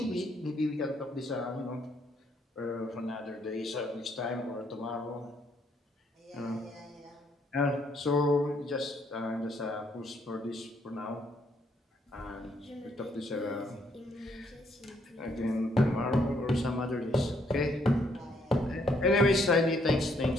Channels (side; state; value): both; normal; correlation 0.70